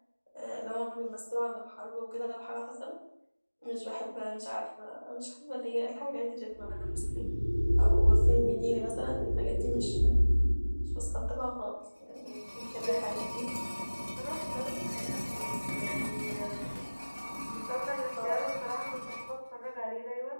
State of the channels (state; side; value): inverted; both; correlation -1.00